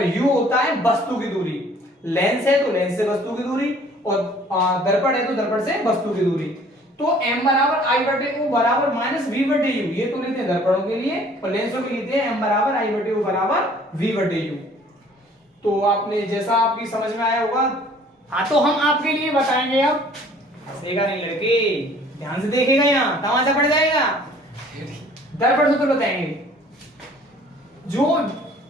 u होता है वस्तु की दूरी। लेंस है तो लेंस से वस्तु की दूरी, और दर्पण है तो दर्पण से वस्तु की दूरी। तो m बराबर I बटे O बराबर -v बटे U, ये तो लेते हैं दर्पणों के लिए, और लेंसों के लिए लेते हैं m बराबर I बटे O बराबर v बटे U। तो आपने जैसा आपकी समझ में आया होगा। हाँ तो हम आपके लिए बताएंगे अब, हंसेगा नहीं लड़के, ध्यान से देखेगा, यहाँ तमाशा पड़ जाएगा। दर्पण सूत्र बताएंगे जो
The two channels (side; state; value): both; normal; correlation 0.54